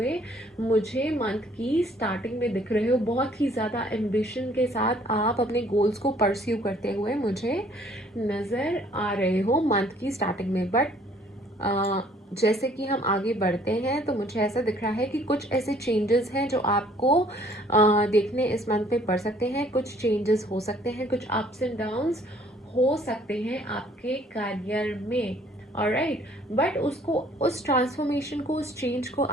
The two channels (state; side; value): normal; both; correlation 0.59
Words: मुझे मंथ की स्टार्टिंग में दिख रहे हो। बहुत ही ज़्यादा एम्बिशन के साथ आप अपने गोल्स को परस्यू करते हुए मुझे नज़र आ रहे हो मंथ की स्टार्टिंग में। बट जैसे कि हम आगे बढ़ते हैं तो मुझे ऐसा दिख रहा है कि कुछ ऐसे चेंजेस हैं जो आपको देखने इस मंथ में पड़ सकते हैं। कुछ चेंजेस हो सकते हैं, कुछ अप्स एंड डाउन्स हो सकते हैं आपके करियर में। ऑलराइट, बट उसको, उस ट्रांसफॉर्मेशन को, उस चेंज को